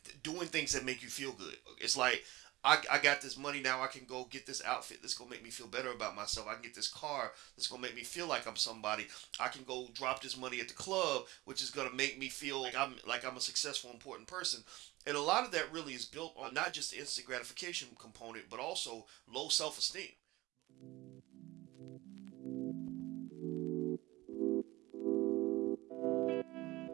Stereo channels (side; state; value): left; quieter; 19.5 dB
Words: doing things that make you feel good. It's like, I got this money now, I can go get this outfit that's going to make me feel better about myself. I can get this car that's going to make me feel like I'm somebody. I can go drop this money at the club, which is going to make me feel like I'm a successful, important person. And a lot of that really is built on not just the instant gratification component, but also low self-esteem.